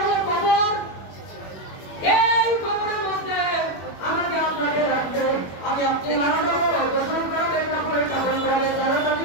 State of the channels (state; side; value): late; right; 21 ms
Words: হলো কবর। এই কবরের মধ্যে আমাকে আপনাকে রাখবে, আমি আপনি মারা যাবো, গোসল করাবে, কাপড় পরাবে, তারা